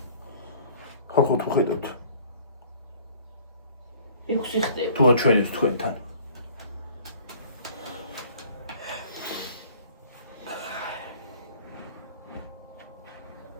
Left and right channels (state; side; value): inverted; both; correlation -0.51